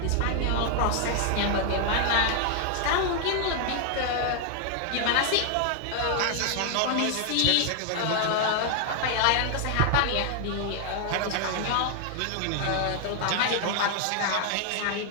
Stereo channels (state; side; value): different; both; correlation 0.00